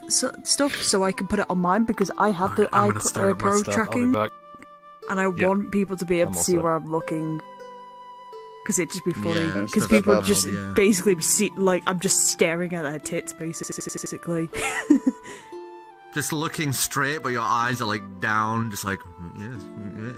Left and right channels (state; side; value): identical; both; correlation 1.00